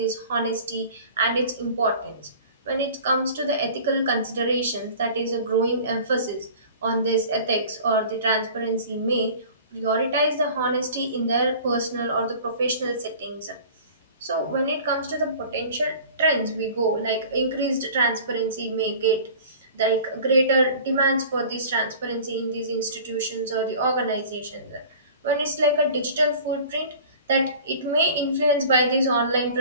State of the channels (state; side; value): inverted; both; correlation -0.43